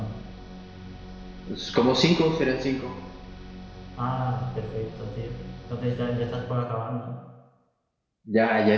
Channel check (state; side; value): identical; both; correlation 1.00